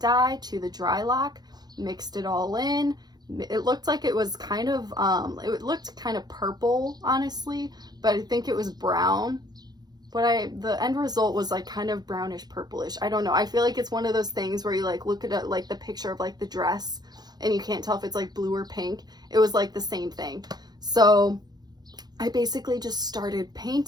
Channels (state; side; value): late; left; 0.19 ms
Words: to the dry lock, mixed it all in. It looked like it was kind of, it looked kind of purple, honestly, but I think it was brown. But the end result was like kind of brownish purplish. I don't know. I feel like it's one of those things where you like look at it, like the picture of like the dress and you can't tell if it's like blue or pink. It was like the same thing. So I basically just started